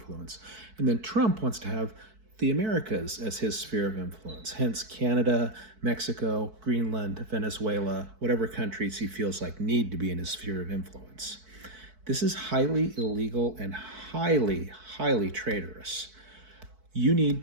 And then Trump wants to have the Americas as his sphere of influence. Hence Canada, Mexico, Greenland, Venezuela, whatever countries he feels like need to be in his sphere of influence. This is highly illegal and highly, highly traitorous. You need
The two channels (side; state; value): left; late; 4.6 ms